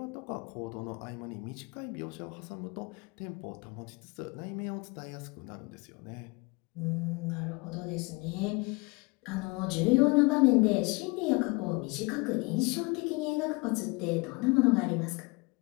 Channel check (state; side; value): quieter; right; 28.1 dB